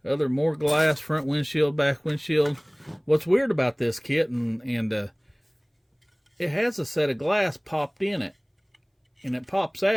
other more glass, front windshield, back windshield. What's weird about this kit, and it has a set of glass popped in it, and it pops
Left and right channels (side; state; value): both; identical; correlation 1.00